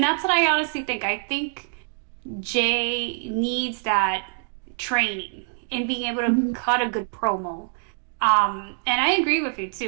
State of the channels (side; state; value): left; silent; 62 dB below the other